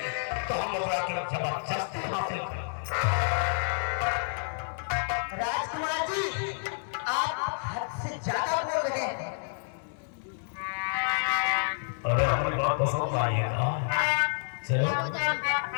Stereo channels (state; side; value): silent; right; digital silence